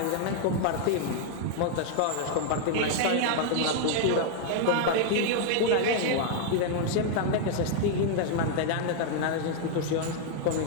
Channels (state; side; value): different; both; correlation 0.00